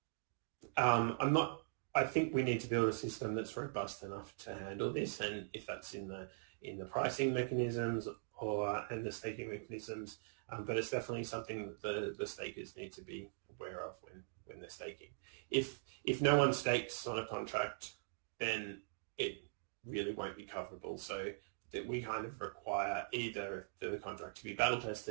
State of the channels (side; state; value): left; silent; digital silence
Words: I think we need to build a system that's robust enough to handle this, and if that's in the pricing mechanisms and the staking mechanisms, but it's definitely something that the stakers need to be aware of when they're staking. If no one stakes on a contract, then it really won't be coverable. So that we kind of require either the contract to be battle